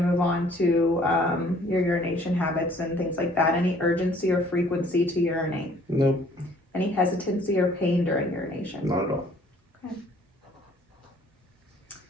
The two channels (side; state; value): both; normal; correlation 0.58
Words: on to your urination habits and things like that. Any urgency or frequency to urinate? Nope, Any hesitancy or pain during urination? not at all.